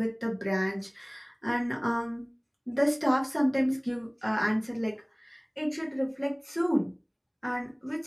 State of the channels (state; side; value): identical; both; correlation 1.00